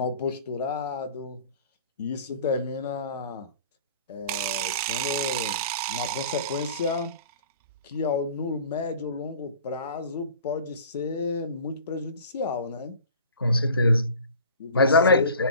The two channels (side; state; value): both; inverted; correlation -0.44